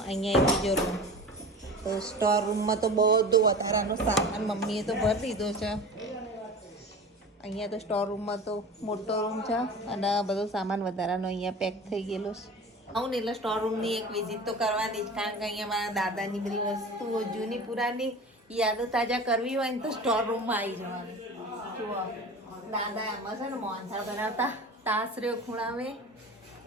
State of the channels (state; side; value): normal; both; correlation 0.35